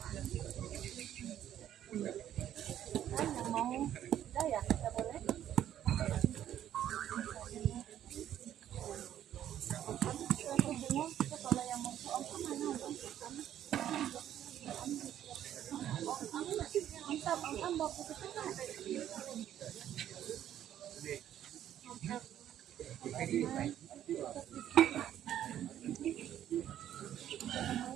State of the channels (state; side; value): quieter; left; 11.1 dB